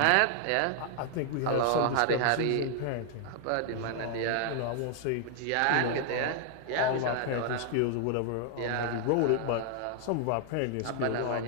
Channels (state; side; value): different; both; correlation 0.00